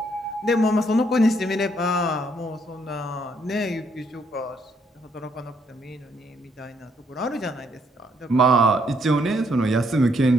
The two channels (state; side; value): normal; both; correlation 0.71